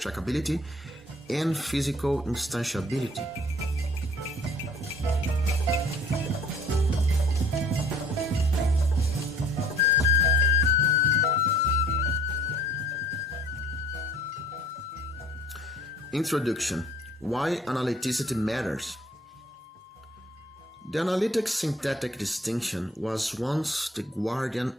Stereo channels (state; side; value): normal; both; correlation 0.54